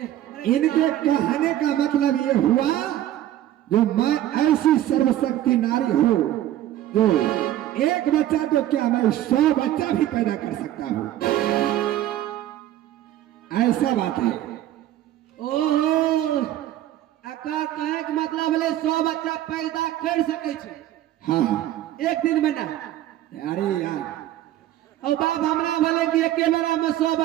इनके कहने का मतलब ये हुआ, जो मैं ऐसी सर्वशक्ति नारी हूँ जो एक बच्चा तो क्या, मैं 100 बच्चा भी पैदा कर सकता हूँ, ऐसा बात है। ओहो, अकार कहे के मतलब है 100 बच्चा पैदा कर सके छे। हाँ, एक दिन में ना। अरे यार, और बाप हमरा बोले कि एक बेरा में 100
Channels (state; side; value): quieter; left; 13.1 dB